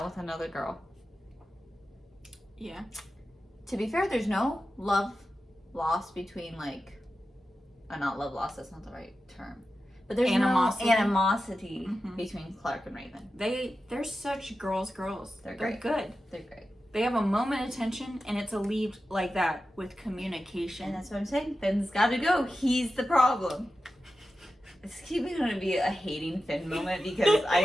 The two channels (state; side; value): normal; both; correlation 0.92